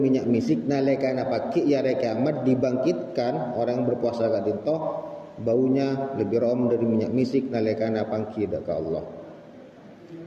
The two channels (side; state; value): both; identical; correlation 1.00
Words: misik nalekana pagi ya kiamat dibangkitkan orang berpuasa gak dinto baunya lebih room dari minyak misik nalekana pangki dak Allah.